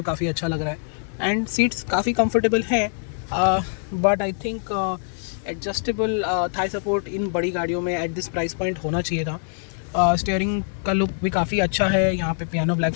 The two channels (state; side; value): silent; right; 63 dB below the other